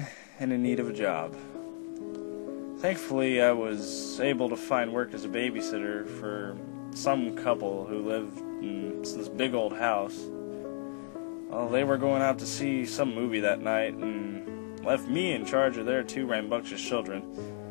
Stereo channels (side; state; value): right; silent; digital silence